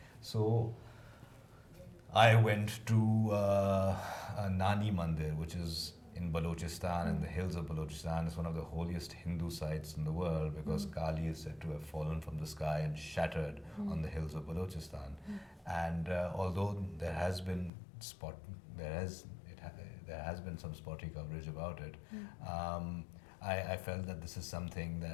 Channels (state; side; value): drops out; right; at 17.7 s